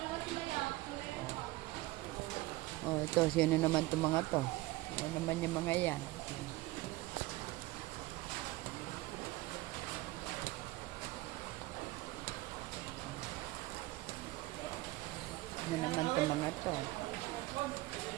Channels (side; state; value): left; quieter; 19.4 dB